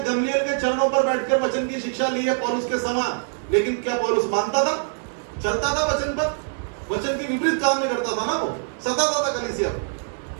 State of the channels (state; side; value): silent; left; digital silence